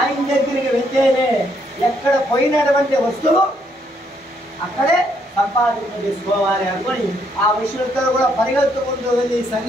దగ్గరికి వెళ్తేనే ఎక్కడ పోయినటువంటి వస్తువు అక్కడే సంపాదింప చేసుకోవాలి అనుకొని ఆ విషయంతో కూడా పరిగెత్తుకుంటూ వెళ్ళి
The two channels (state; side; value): normal; both; correlation 0.72